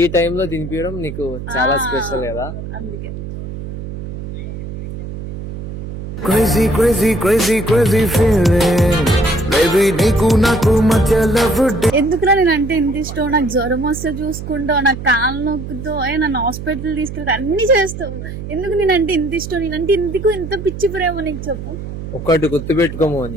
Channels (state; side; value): noise; right; hum, 9 dB below the sound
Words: టైంలో తినిపించడం నీకు చాలా స్పెషల్ కదా, అందుకే. Crazy, crazy, crazy, crazy feeling. Baby, నీకు నాకు మధ్య love day. ఎందుకురా నేను అంటే ఇంత ఇష్టం? నాకు జ్వరం వస్తే చూసుకుంటావు, నాకు కాళ్ళు నొక్కుతావు, నన్ను హాస్పిటల్ తీసుకెళ్తా, అన్ని చేస్తావు. ఎందుకు నేనంటే ఇంత ఇష్టం? నేనంటే ఇందుకు ఇంత పిచ్చి ప్రేమ నీకు చెప్పు. ఒక్కటి గుర్తుపెట్టుకోము